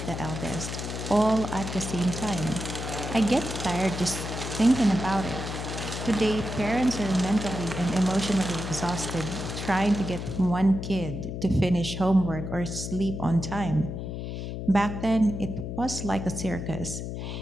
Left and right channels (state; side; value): noise; left; hum, 6 dB below the sound